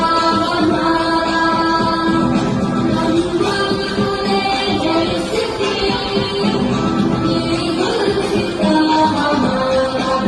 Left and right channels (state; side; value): identical; both; correlation 1.00